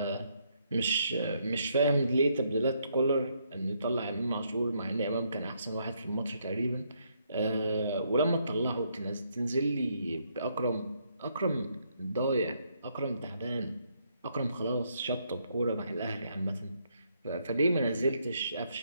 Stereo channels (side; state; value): both; inverted; correlation -0.74